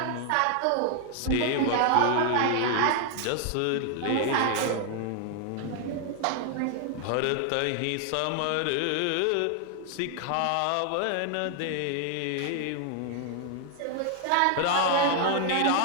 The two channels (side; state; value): both; different; correlation 0.00